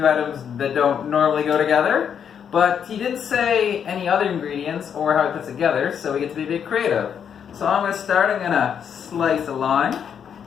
items that don't normally go together. But he didn't say any other ingredients or how it puts together, so we get to be a bit creative. So I'm going to start. I'm going to slice a lime,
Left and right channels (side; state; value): right; quieter; 7.9 dB